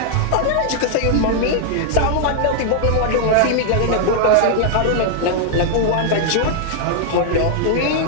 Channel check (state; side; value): different; both; correlation -0.01